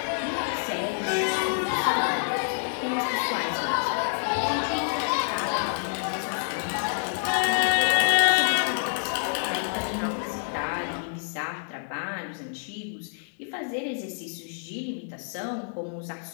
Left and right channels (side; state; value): right; silent; 60 dB below the other